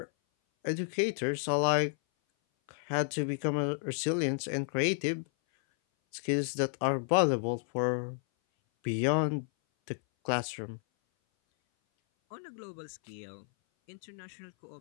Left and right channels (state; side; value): silent; right; 56 dB below the other